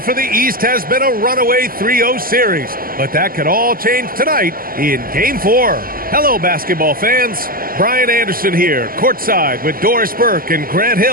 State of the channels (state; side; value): late; left; 0.42 ms